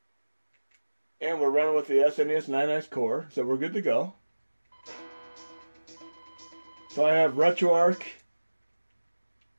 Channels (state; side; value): inverted; both; correlation -1.00